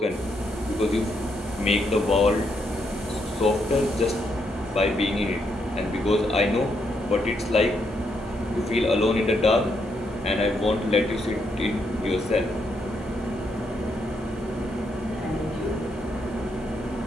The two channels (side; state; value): both; normal; correlation 0.78